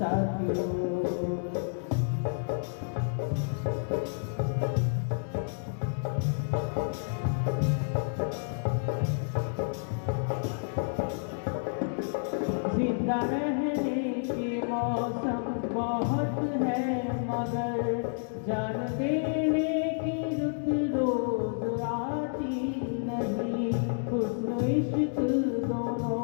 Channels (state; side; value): silent; right; digital silence